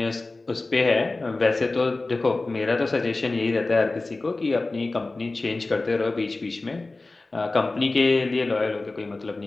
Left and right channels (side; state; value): right; quieter; 3.2 dB